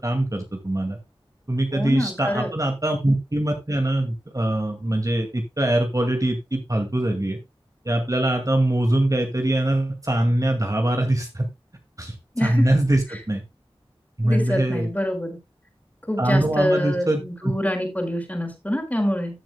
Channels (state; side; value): normal; both; correlation 0.92